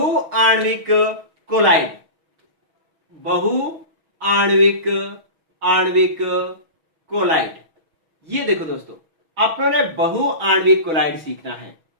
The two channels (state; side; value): late; left; 6.2 ms